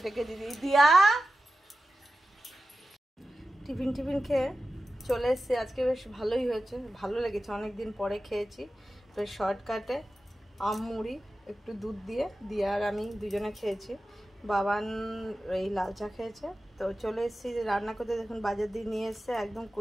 ডেকে দিদি, দিয়া টিফিন খেয়ে চলে এসেছি। আজকে বেশ ভালোই হয়েছে, ভালো লেগেছে, অনেক দিন পরে খেয়েছি। বেশ শর্টকাটে আম মুড়ি একটু দুধ দিয়ে আর আমি দুজনে খেয়েছি। বাবান এই লাল চা খেয়েছে। তো চলে এসেছি যে রান্না করতে। দেখুন বাজার দিয়ে নিয়ে এসছে একদম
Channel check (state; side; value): normal; both; correlation 0.93